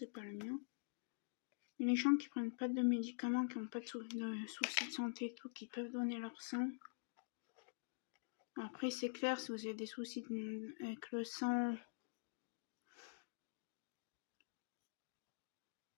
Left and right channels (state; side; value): silent; right; digital silence